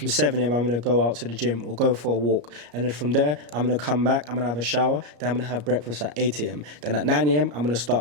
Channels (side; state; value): left; late; 34 ms